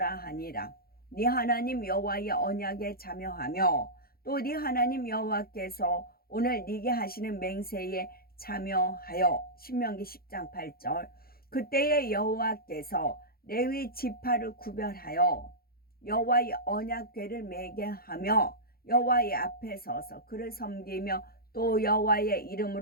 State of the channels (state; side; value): late; right; 0.44 ms